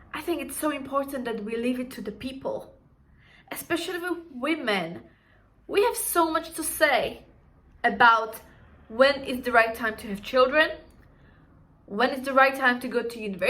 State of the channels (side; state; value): both; identical; correlation 1.00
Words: I think it's so important that we leave it to the people. Especially with women, we have so much to say about when is the right time to have children, when is the right time to go to